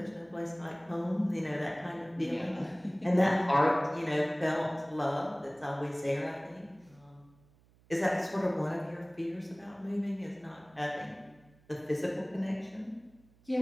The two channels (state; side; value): noise; right; hum, 30 dB below the sound